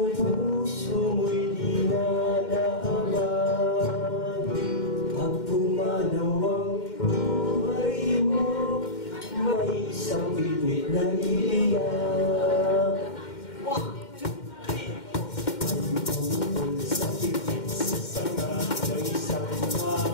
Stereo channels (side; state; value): right; late; 2.1 ms